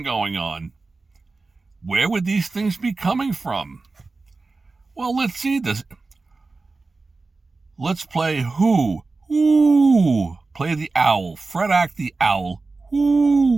going on. Where would these things be coming from? Well, let's see this. Let's play who? Ooh, play the owl. Fred Hack the owl.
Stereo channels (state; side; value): quieter; left; 3.7 dB